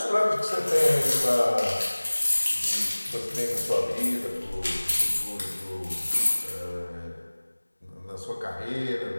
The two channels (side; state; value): both; inverted; correlation -1.00